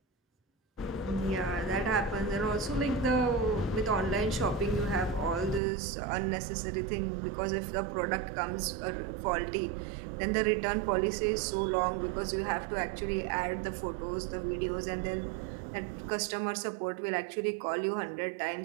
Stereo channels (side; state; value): left; drops out; at 5.6 s